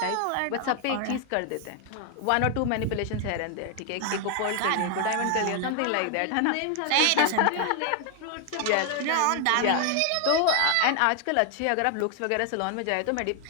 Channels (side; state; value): both; different; correlation 0.00